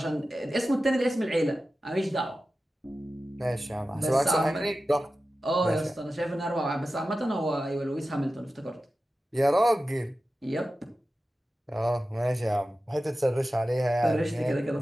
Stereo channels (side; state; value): both; normal; correlation 0.94